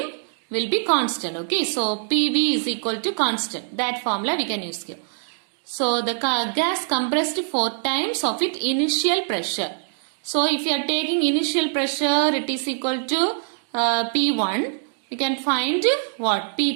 will be constant. Okay, so PV is equal to constant. That formula we can use here. So the gas compressed 4 times of its initial pressure. So if you are taking initial pressure, it is equal to P1. We can find what?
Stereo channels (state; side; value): silent; left; digital silence